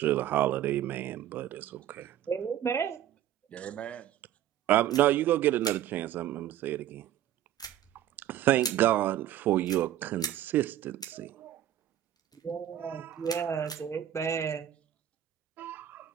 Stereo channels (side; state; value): left; quieter; 11.6 dB